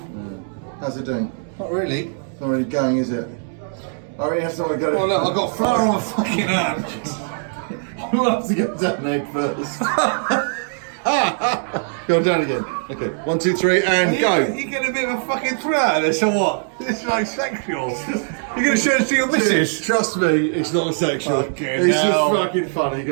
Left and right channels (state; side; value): silent; left; 65 dB below the other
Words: How's it doing? Not really. It's not really going, is it? I really have someone to go. Oh look, I've got flour on my fucking hand. We'll have to get down there first. Go down again. Okay, 1, 2, 3, and go. You get a bit of a fucking thrill out of this, or what? It's like sexual. You're going to show it to your missus? Trust me, it's not sexual. Fucking it's hell. just fucking funny.